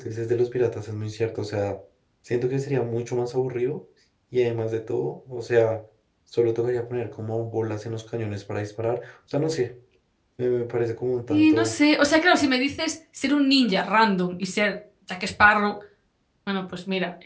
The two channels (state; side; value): identical; both; correlation 1.00